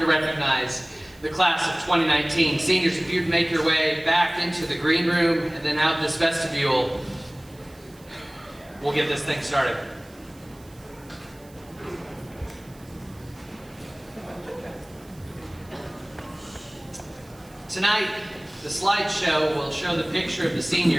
recognize the class of 2019. Seniors, if you'd make your way back into the green room and then out this vestibule, we'll get this thing started. Tonight, the slideshow will show the picture of the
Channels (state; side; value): noise; right; hiss, 26 dB below the sound